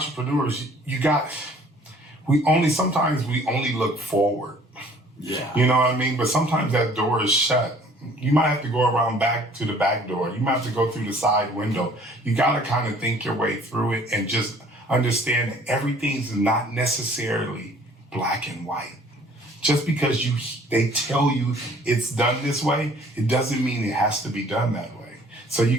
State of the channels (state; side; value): normal; both; correlation 0.54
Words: sometimes we only look forward. Yeah. You know what I mean? But sometimes that door is shut. You might have to go around back to the back door. You might have to go through the side window. You got to kind of think your way through it and just understand that everything's not necessarily black and white. Just because they tell you it's done this way, it doesn't mean it has to be done that way. So you